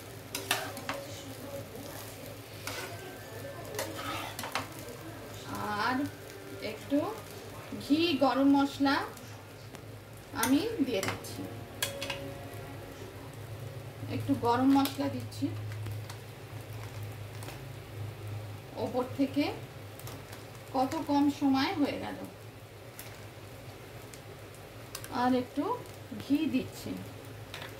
আর একটু ঘি, গরম মশলা আমি দিয়ে দিচ্ছি, একটু গরম মশলা দিচ্ছি ওপর থেকে। কত কম সময় হয়ে গেল। আর একটু ঘি দিচ্ছি।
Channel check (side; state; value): both; identical; correlation 1.00